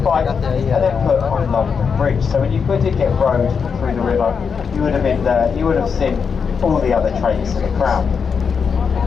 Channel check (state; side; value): quieter; right; 6.1 dB